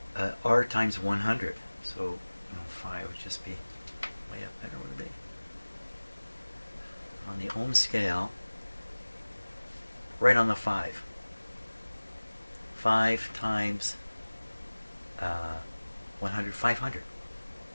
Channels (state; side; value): inverted; both; correlation -1.00